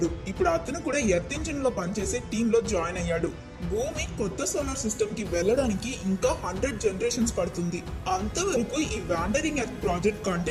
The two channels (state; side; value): identical; both; correlation 1.00